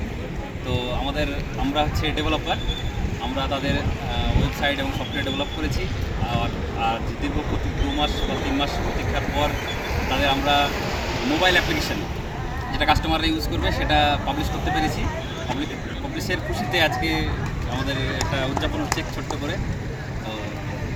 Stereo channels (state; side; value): identical; both; correlation 1.00